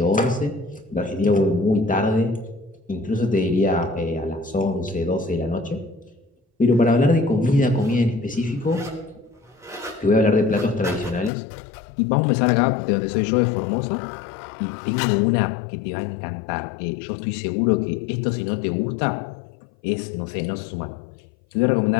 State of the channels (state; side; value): drops out; right; at 11.3 s